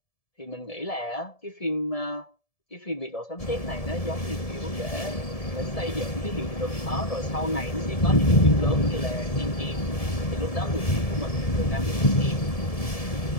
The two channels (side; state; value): right; late; 1.7 ms